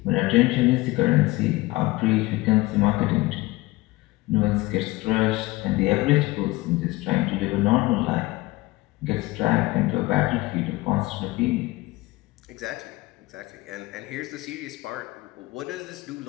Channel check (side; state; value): right; quieter; 20.6 dB